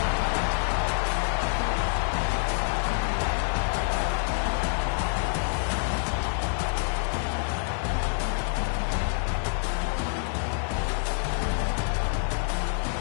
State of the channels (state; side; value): silent; right; 60 dB below the other